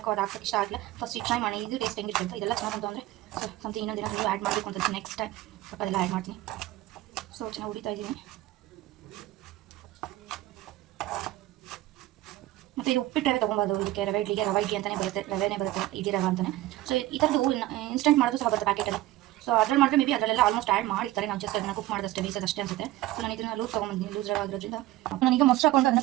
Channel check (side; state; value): left; quieter; 15.9 dB